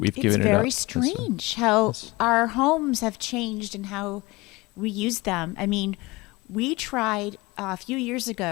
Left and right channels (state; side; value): quieter; right; 22.4 dB